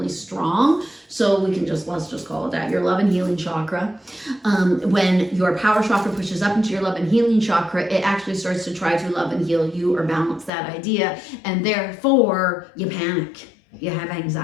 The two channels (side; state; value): right; drops out; at 10.5 s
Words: strong. So we can let's just call it that, your love and healing chakra. When your power chakra pushes up into your love and healing chakra, it actually starts to try to love and heal you or balance that idea. And therefore you panic, you have